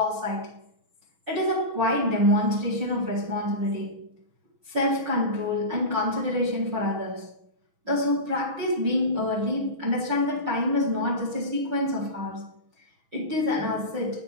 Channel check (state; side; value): late; left; 6.2 ms